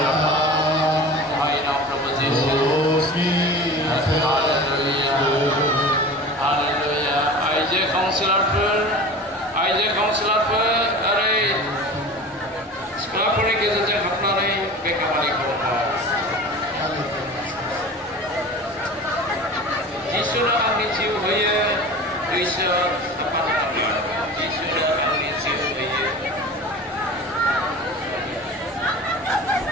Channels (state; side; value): normal; both; correlation 0.36